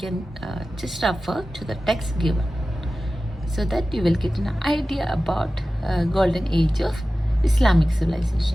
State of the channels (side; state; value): both; normal; correlation 0.95